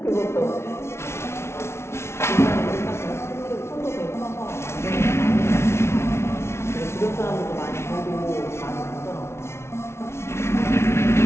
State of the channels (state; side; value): late; right; 0.13 ms